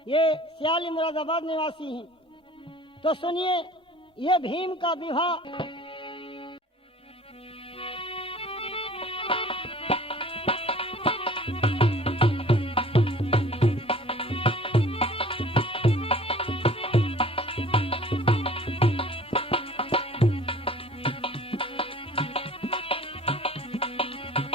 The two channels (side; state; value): both; normal; correlation 0.48